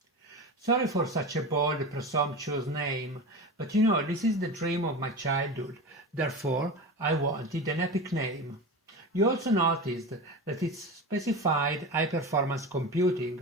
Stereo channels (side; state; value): both; normal; correlation 0.27